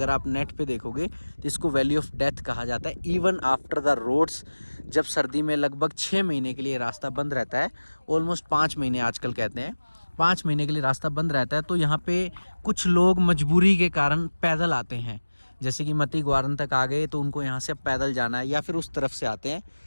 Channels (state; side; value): inverted; both; correlation -1.00